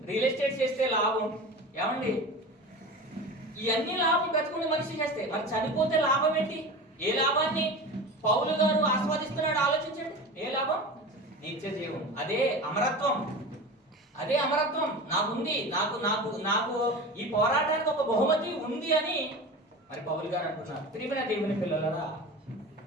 రియల్ ఎస్టేట్ చేస్తే లాభం, ఏమండి ఇవన్నీ లాభం బ్రతుకుంటే మనిషి చేస్తే. మరి చనిపోతే లాభం ఏంటి? ఏ లాభాన్ని పౌలు గారు ఆస్వాదిస్తున్నాడు ఆలోచించండి. ఏ లాభం? నిత్య జీవం. అదే అమరత్వం. అదే అమరత్వం నాకుంది. నాకు నాకు నాకు ఈ పోరాటానికి ఒక బహుమతి ఉంది అని మరి పౌలు గారు అంటున్నారు. ప్రియమైన దేవుని పిల్లలరా,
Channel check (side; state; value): both; normal; correlation 0.32